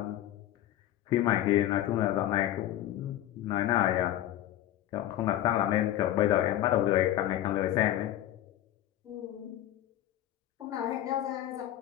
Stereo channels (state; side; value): quieter; right; 13.0 dB